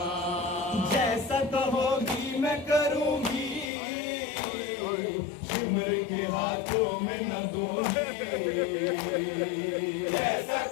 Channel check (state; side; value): drops out; right; at 3.7 s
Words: जैसा कहोगी मैं करूंगी, शिमर के हाथों में न दूंगी। जैसा